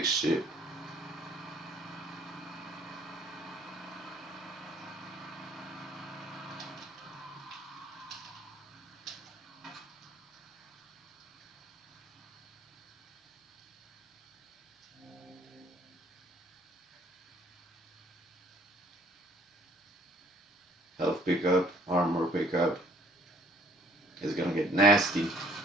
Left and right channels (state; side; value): normal; both; correlation 0.60